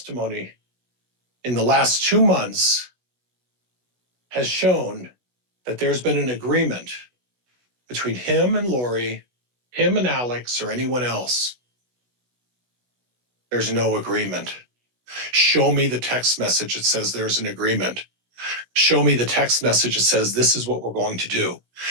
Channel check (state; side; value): late; left; 16 ms